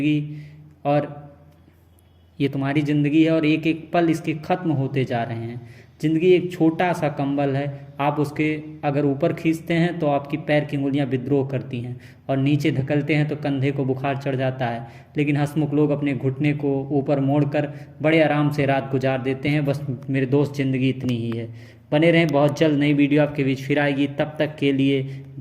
है और एक एक पल इसके ख़त्म होते जा रहे हैं। ज़िंदगी एक छोटा सा कंबल है, आप उसके अगर ऊपर खींचते हैं तो आपकी पैर की उंगलियां विद्रोह करती हैं और नीचे धकेलते हैं तो कंधे को बुखार चढ़ जाता है। लेकिन हंसमुख लोग अपने घुटने को ऊपर मोड़कर बड़े आराम से रात गुजार देते हैं। बस मेरे दोस्त, ज़िंदगी इतनी ही है। बने रहें, बहुत जल्द नई वीडियो आपके बीच फिर आएगी। तब तक के लिए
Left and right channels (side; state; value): both; identical; correlation 1.00